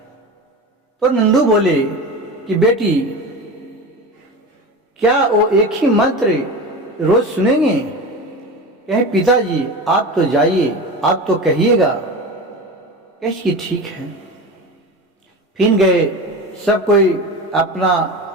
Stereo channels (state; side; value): normal; both; correlation 0.28